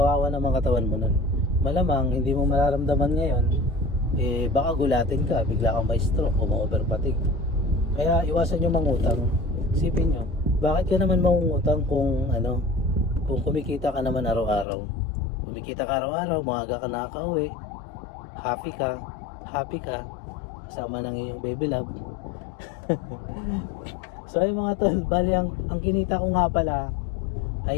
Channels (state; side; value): drops out; right; at 14.7 s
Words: na mga katawan mo nun. Malamang hindi mo mararamdaman ngayon, baka gulatin ka, bigla kang may stroke o ma-overfatigue. Kaya iwasan nyo mangutang. Isipin nyo, bakit ka naman mangungutang kung kumikita ka naman araw-araw? Kumikita ka araw-araw, maaga ka nakaka-uwi, happy ka, kasama ng iyong baby love. So ay mga tol, bali ang kinita ko nga pala